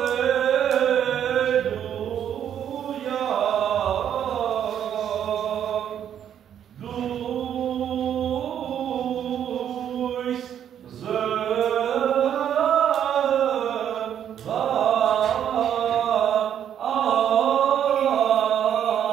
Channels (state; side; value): quieter; left; 9.5 dB